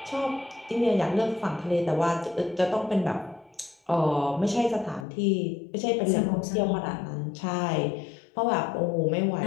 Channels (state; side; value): drops out; right; at 5.1 s